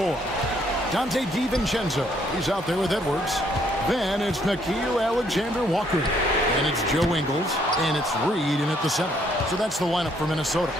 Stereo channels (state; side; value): normal; both; correlation 0.68